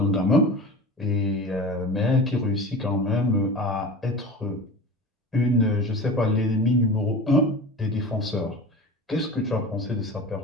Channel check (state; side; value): normal; both; correlation 0.34